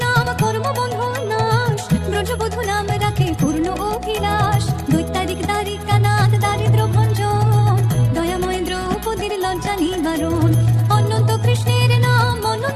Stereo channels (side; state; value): both; identical; correlation 1.00